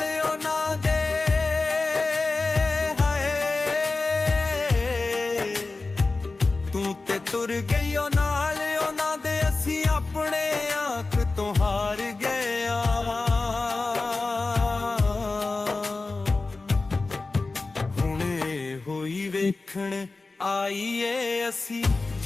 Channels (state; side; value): quieter; right; 3.6 dB